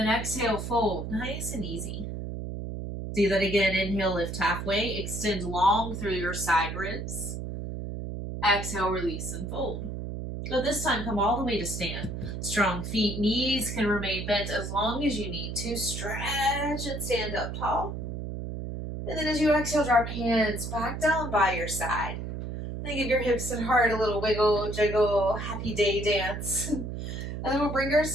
exhale, fold. Nice and easy. Do that again. Inhale, lift halfway. Extend long through your side ribs. Exhale, release and fold. So this time, come all the way to stand. Strong feet, knees can remain bent as long as you need to. Stretch and stand up tall. And then as you exhale, drop hands back down by your side. Then give your hips and heart a little wiggle, jiggle, happy day dance. And then we'll bring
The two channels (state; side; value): noise; right; hum, 6 dB below the sound